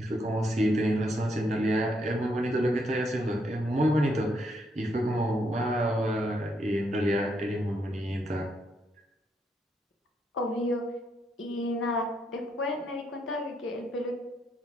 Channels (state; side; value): normal; both; correlation 0.76